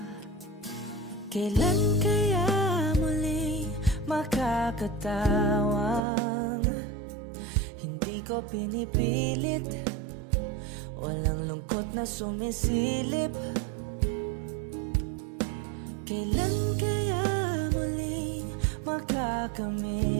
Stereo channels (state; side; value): drops out; left; at 6.0 s